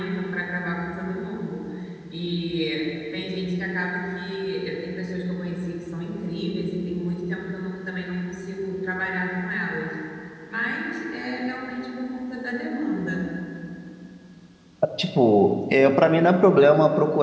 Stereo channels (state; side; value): identical; both; correlation 1.00